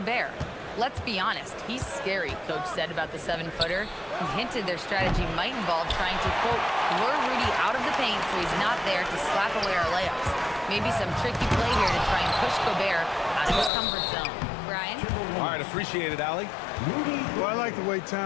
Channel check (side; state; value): right; drops out; at 13.7 s